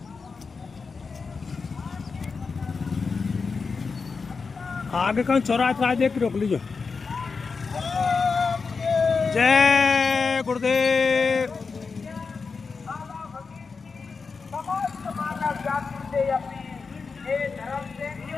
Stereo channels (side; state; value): right; quieter; 4.8 dB